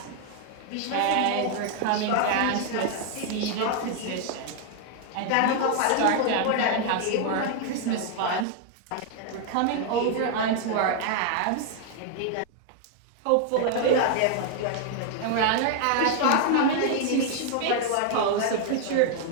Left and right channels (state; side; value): different; both; correlation 0.00